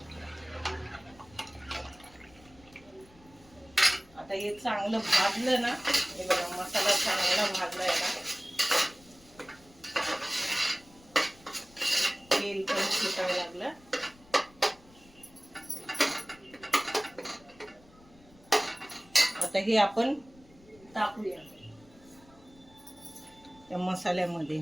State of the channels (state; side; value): noise; left; rumble, 26 dB below the sound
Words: आता हे चांगलं भाजलं ना, हे बघा मसाला चांगला भाजलाय ना, तेल पण सुटायला लागलं. आता हे आपण टाकूया त्या